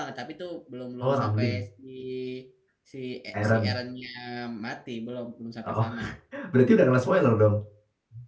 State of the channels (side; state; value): both; identical; correlation 1.00